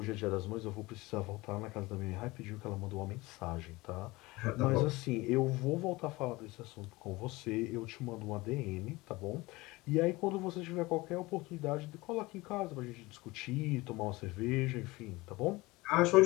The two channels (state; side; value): quieter; right; 21.5 dB